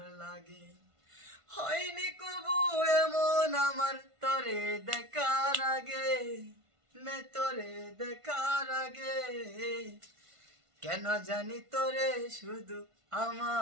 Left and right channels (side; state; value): left; late; 1.5 ms